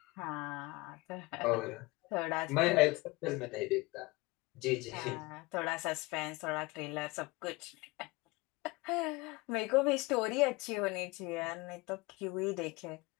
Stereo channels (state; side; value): quieter; right; 23.5 dB